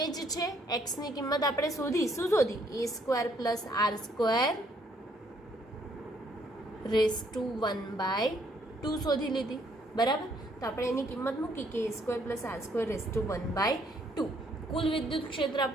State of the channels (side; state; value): both; normal; correlation 0.67